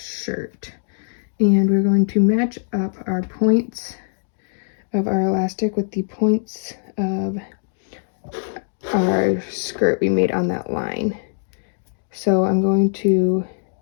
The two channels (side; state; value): right; silent; digital silence